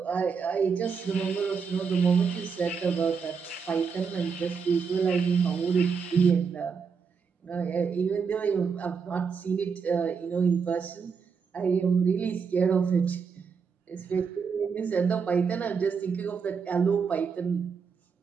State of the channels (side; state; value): left; quieter; 5.8 dB